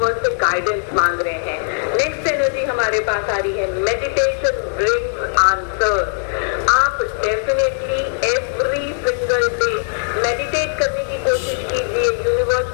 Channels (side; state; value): right; silent; 66 dB below the other